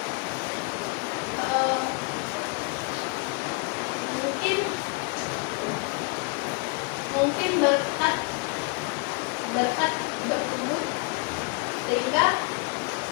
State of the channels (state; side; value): quieter; right; 31.2 dB